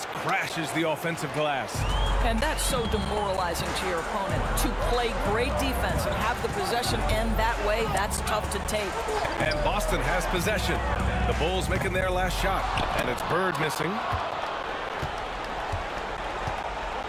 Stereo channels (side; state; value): both; identical; correlation 1.00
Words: crashes the offensive glass. And that's so demoralizing to your opponent. To play great defense and have the possession end that way, that's tough to take. And Boston has possession. The Bulls making their last shot. And it's Bird missing.